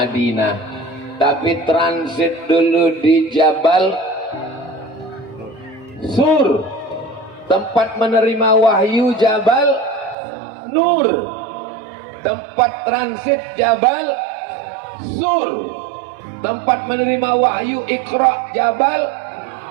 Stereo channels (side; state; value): left; drops out; at 10.2 s